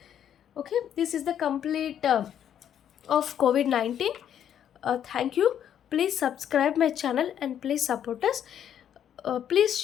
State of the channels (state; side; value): quieter; right; 9.7 dB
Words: Okay, this is the complete of COVID-19. Thank you. Please subscribe my channel and please support us. Please